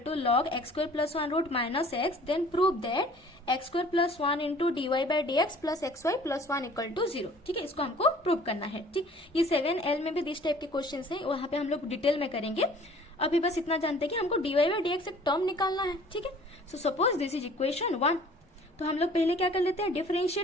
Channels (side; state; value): both; normal; correlation 0.51